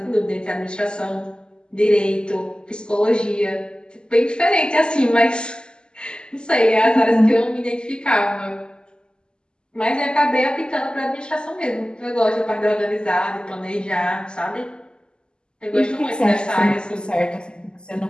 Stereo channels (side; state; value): right; late; 0.047 ms